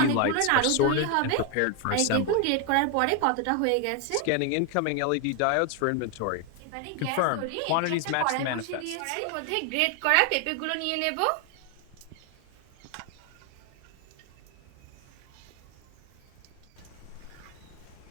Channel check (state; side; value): different; both; correlation 0.01